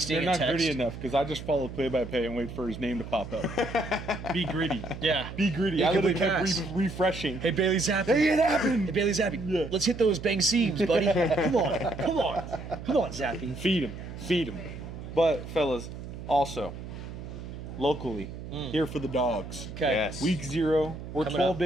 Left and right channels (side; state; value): right; noise; hum, 10 dB below the sound